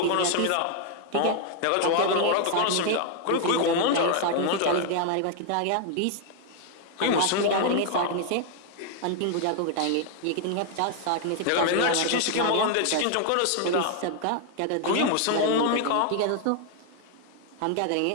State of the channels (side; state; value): both; different; correlation 0.00